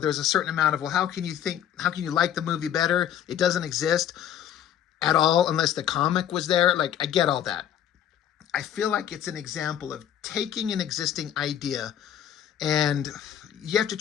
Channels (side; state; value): right; quieter; 10.3 dB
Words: a certain amount of, well, how can you like the movie better? It doesn't exist at all unless the comic was there. Like, I get all that. I feel like it's an example of taking an existing idea and you have to